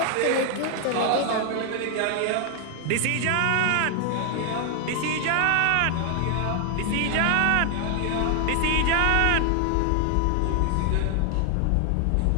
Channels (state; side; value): different; both; correlation 0.00